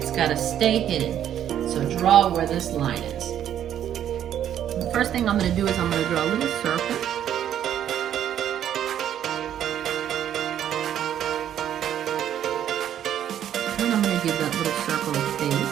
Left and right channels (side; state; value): left; quieter; 10.4 dB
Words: got to stay hidden. So draw where this line is. The first thing I'm going to do is I'm going to draw a little circle. And I'm going to give that little circle a